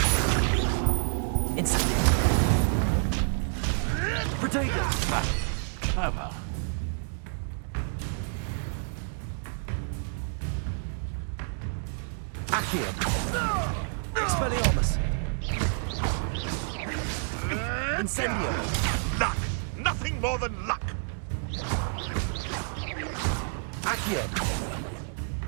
Incendio. Protego. Clever. Accio. Expelliarmus. Incendio. Luck! Nothing more than luck! Accio.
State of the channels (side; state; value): left; silent; digital silence